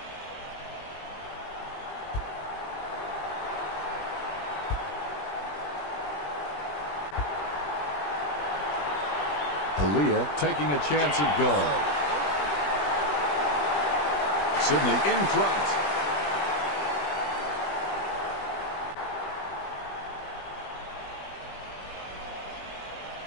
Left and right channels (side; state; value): right; late; 20 ms